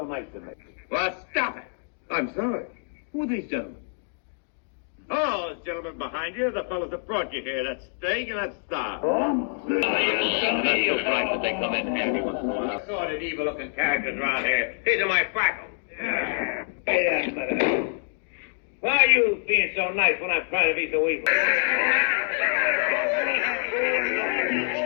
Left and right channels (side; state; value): right; silent; 61 dB below the other